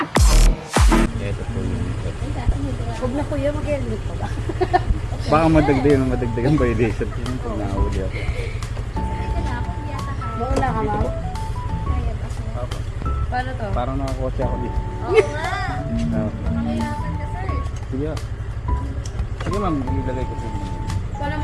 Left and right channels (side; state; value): both; identical; correlation 1.00